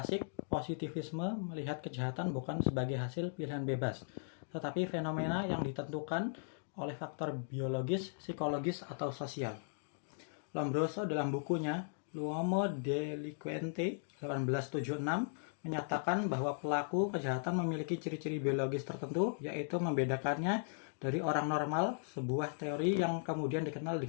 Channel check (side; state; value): right; silent; digital silence